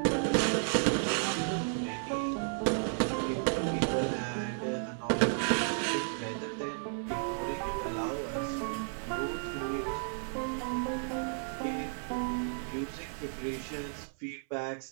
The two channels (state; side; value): silent; left; 56 dB below the other